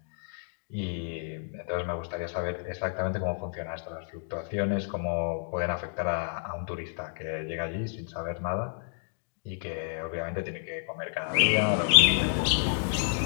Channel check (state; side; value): silent; right; digital silence